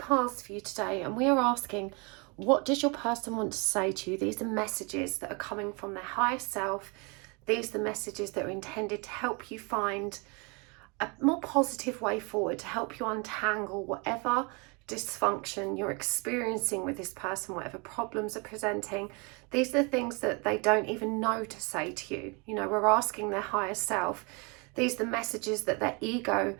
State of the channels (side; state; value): left; quieter; 30.9 dB